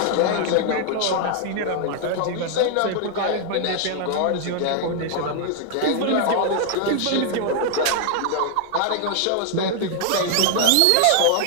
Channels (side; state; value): both; different; correlation 0.00